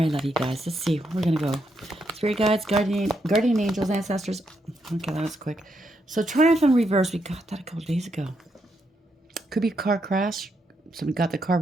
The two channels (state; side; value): normal; both; correlation 0.79